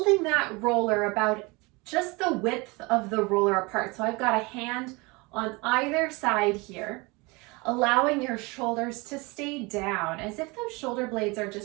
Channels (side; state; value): left; quieter; 26.0 dB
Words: that roller about just the width of the roller apart. So I've got a hand on either side here, allowing your shoulders to stay down as if those shoulder blades are